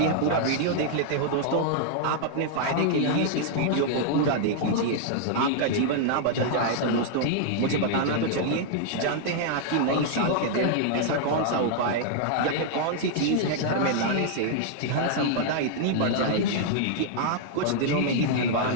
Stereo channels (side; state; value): both; different; correlation -0.01